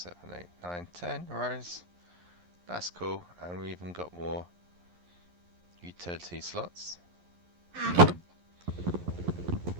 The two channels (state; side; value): late; left; 11 ms